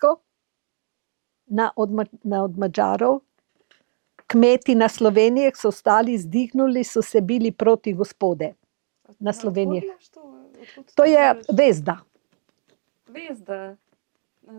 od Madžarov. Kmeti na Sloveniji so stali, zdihnuli, so se bili proti Gospode. Na Sloveniji. Odkud imaš to? Odkud To je bereš? Vezda. Vezda.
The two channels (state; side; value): silent; left; 60 dB below the other